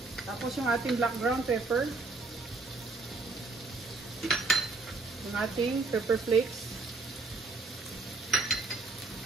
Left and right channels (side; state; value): left; quieter; 3.6 dB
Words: Tapos yung ating black ground pepper. Yung ating pepper flakes.